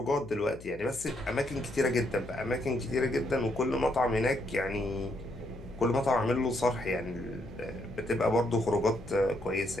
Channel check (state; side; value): noise; left; hum, 17 dB below the sound